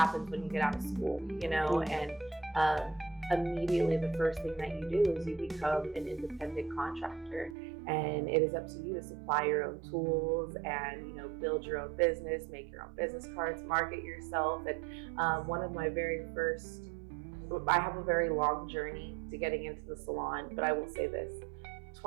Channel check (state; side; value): drops out; left; at 7.6 s